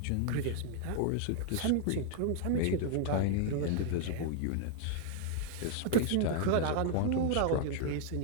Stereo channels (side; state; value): both; different; correlation 0.00